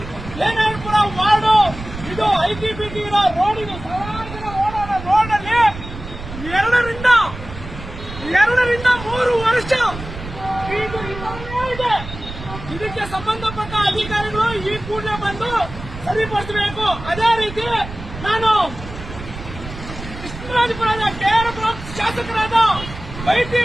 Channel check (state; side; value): noise; right; rumble, 12 dB below the sound